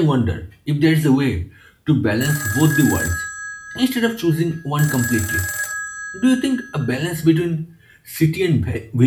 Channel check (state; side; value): identical; both; correlation 1.00